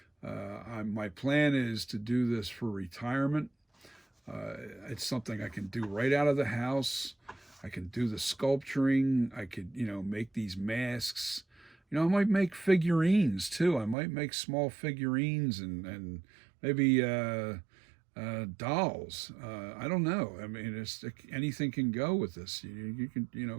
my plan is to do this for retirement. It's something I can do right out of the house. I can do the sculpturing. I could, make these masks. I might make figurines too. I might make small figurines and maybe dolls. I don't know. I mean, anything can go with this. You can,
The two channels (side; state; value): left; drops out; at 14.0 s